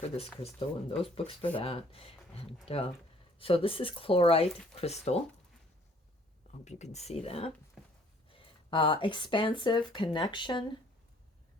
this crystal and those books for that. And so this is Chlorite Crystal. I hope you can see that. Expansive connection,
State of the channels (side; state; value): both; normal; correlation 0.59